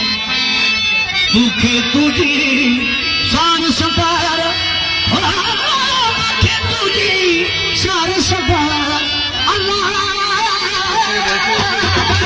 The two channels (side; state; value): both; identical; correlation 1.00